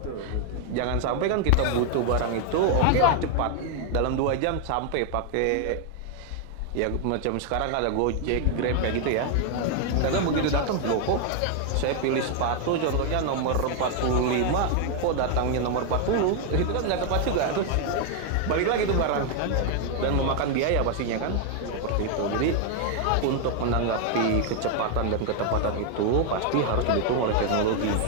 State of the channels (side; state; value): both; different; correlation 0.00